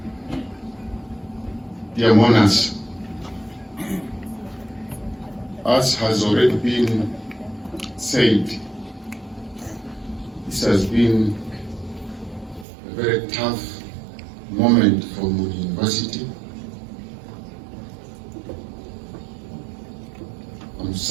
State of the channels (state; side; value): drops out; left; at 12.7 s